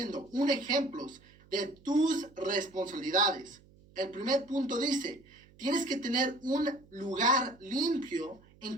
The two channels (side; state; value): right; noise; hum, 26 dB below the sound